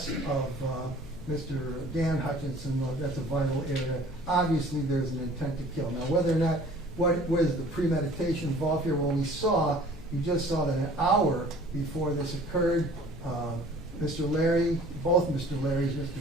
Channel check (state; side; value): normal; both; correlation 0.50